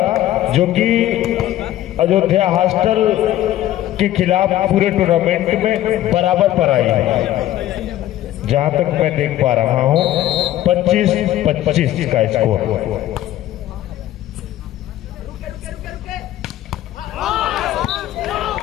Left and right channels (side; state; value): right; quieter; 13.6 dB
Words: जो कि अयोध्या हॉस्टल के खिलाफ पूरे टूर्नामेंट में बराबर पर आई है। जहां तक मैं देख पा रहा हूं 25-25 का स्कोर।